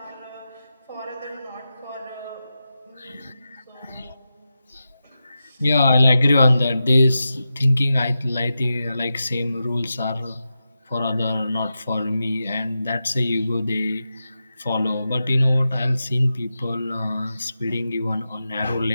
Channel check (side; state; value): both; inverted; correlation -0.91